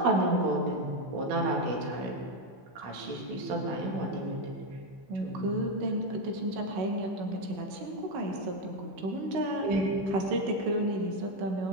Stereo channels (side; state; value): left; late; 15 ms